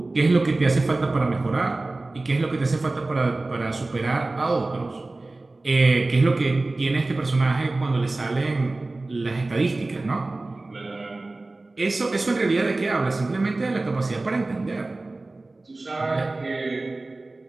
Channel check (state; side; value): quieter; left; 3.1 dB